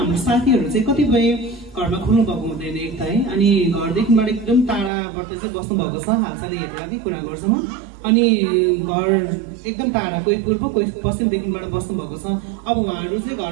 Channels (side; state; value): left; drops out; at 4.9 s